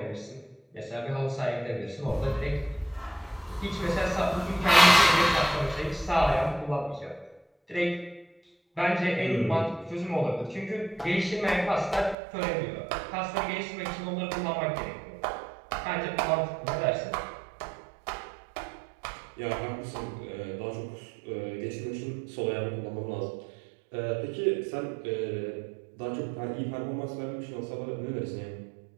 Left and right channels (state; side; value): drops out; left; at 12.2 s